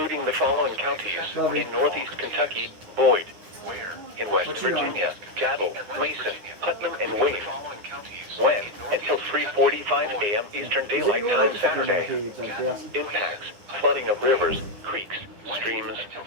the following counties in northeast Kentucky: Boyd. In West Virginia: Cattle, Mason, Putnam, and Wayne. When? Until 3:45 a.m. Eastern Daylight Time Saturday. Impacts: flooding of rivers, creeks, streams,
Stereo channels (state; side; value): late; left; 9.8 ms